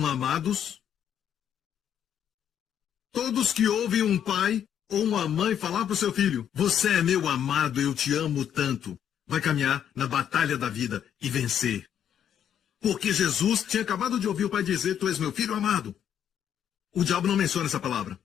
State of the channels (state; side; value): quieter; right; 9.3 dB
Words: amados. Todos que ouvem um pai ou uma mãe falar para o seu filho, você é meu amado, eu te amo tanto, vai caminhar na batalha da vida e vencer. Porque Jesus tinha acabado de ouvir o pai dizer, tu és meu filho amado. O diabo não menciona essa palavra.